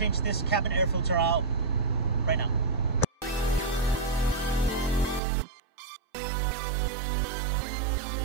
this cabin air filter out right now.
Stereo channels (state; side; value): drops out; left; at 5.2 s